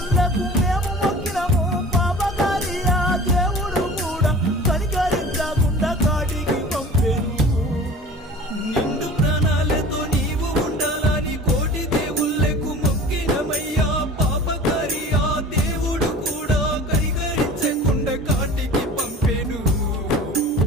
మేము మొక్కినము పాపకారి ఆ దేవుడు కూడా కనికరించకుండా కాటికి పంపెను నిండు ప్రాణాలతో నీవు ఉండాలని కోటి దేవుళ్ళకు మొక్కినమయ్యా పాపకారి ఆ దేవుడు కూడా కనికరించకుండా కాటికి పంపెను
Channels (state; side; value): normal; both; correlation 0.41